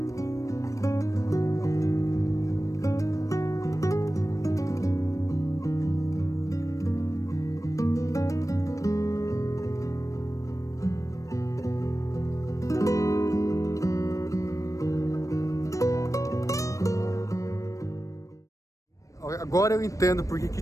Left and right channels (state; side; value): late; right; 0.16 ms